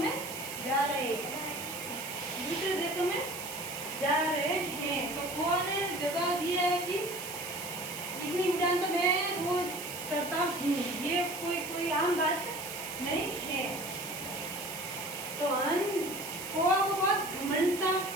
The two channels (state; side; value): noise; right; hiss, 9 dB below the sound